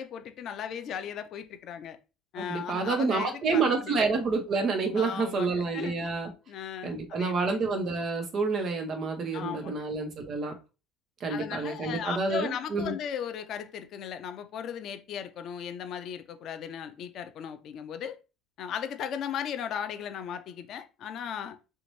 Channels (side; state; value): both; normal; correlation 0.57